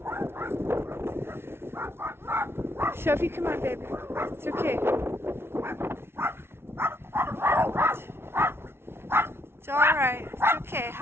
Sophie, come on, baby. It's okay. It's all right. It's okay.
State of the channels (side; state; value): left; late; 0.12 ms